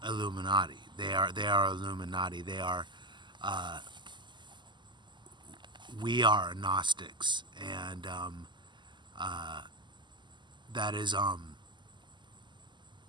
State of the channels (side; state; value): left; late; 0.22 ms